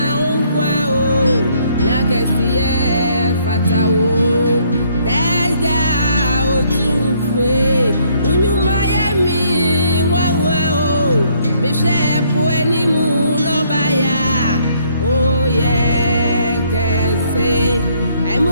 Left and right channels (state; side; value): inverted; both; correlation -0.67